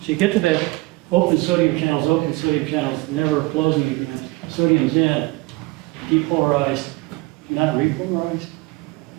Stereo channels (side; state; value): left; quieter; 22.2 dB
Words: So you get to that open sodium channels, never closing again. Sodium's in, depolarized, not repolarized,